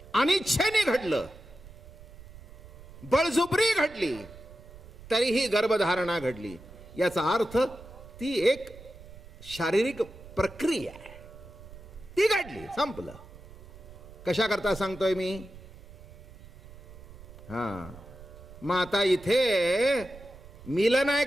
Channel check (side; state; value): right; noise; rumble, 18 dB below the sound